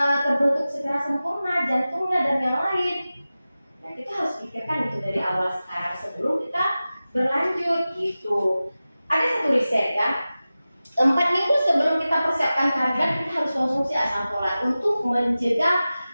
terbentuk secara sempurna, jantungnya dan yang lain. Nah, kita harus pikirkan itu dari awal sekarang sebelum kita berlanjut gitu. Ada satu riset ya, 4 minggu sebelum kita persiapkan kehamilan kita harus konsumsi asam folat untuk mencegah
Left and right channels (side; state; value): both; inverted; correlation -0.96